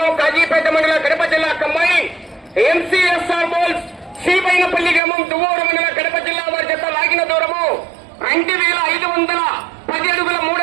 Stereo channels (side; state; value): left; drops out; at 5.0 s